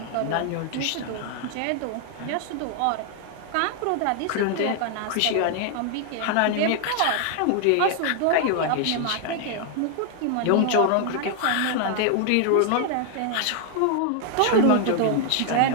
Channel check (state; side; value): different; both; correlation 0.00